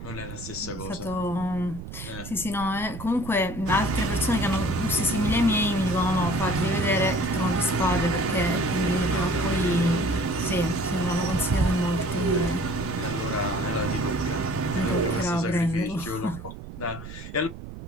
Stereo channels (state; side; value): noise; right; rumble, 12 dB below the sound